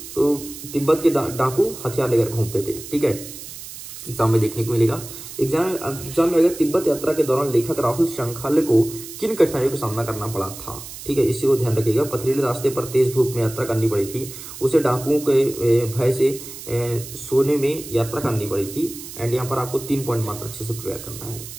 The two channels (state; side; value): noise; right; hiss, 13 dB below the sound